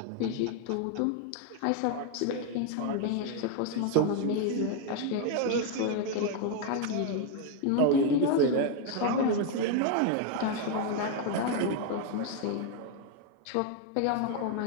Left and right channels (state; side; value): different; both; correlation 0.01